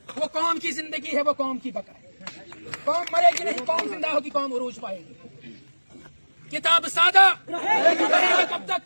وہ قوم کی زندگی ہے, وہ قوم کی بقا ہے. قوم مرے گی نہیں, قوم زندہ ہوگی, قوم عروج پائے گی. کتاب سادہ کب تک,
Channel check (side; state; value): both; inverted; correlation -1.00